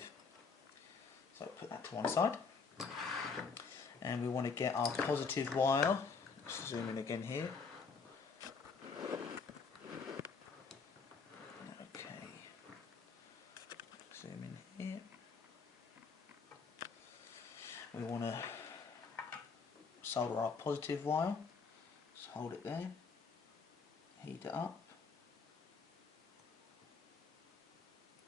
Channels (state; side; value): quieter; right; 5.1 dB